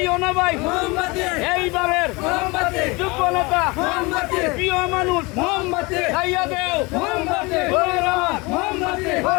না ভাই। এইবারের যোগ্য নেতা প্রিয় মানুষ খাইয়া দেও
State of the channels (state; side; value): quieter; right; 25.5 dB